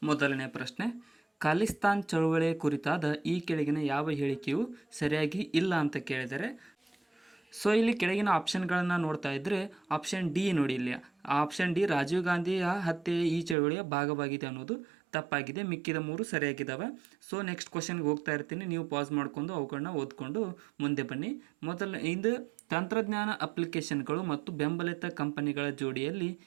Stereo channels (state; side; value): drops out; left; at 13.6 s